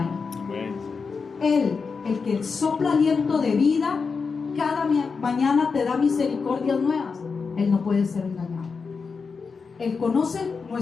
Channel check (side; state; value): right; quieter; 5.1 dB